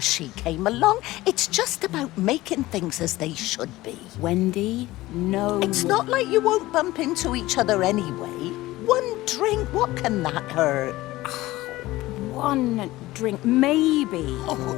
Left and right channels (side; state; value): right; quieter; 17.8 dB